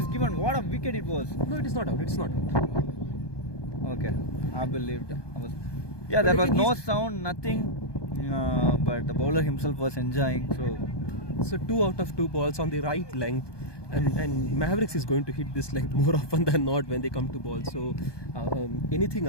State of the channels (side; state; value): right; late; 1.2 ms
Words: given. What a wicket it was. No, it is not out. It's not out. Okay, I believed. Yeah, there was no sound, nothing. But the bowler himself was enjoying. So 2 out of 2 balls on the right length. And Mavericks is going to hit this length more often than not when they come to ball. So anything